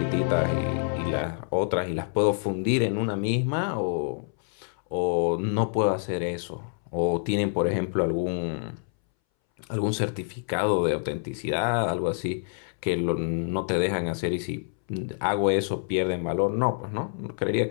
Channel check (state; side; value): silent; right; 60 dB below the other